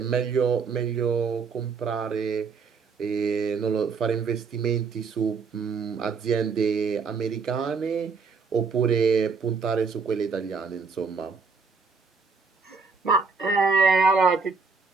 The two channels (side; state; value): left; quieter; 5.0 dB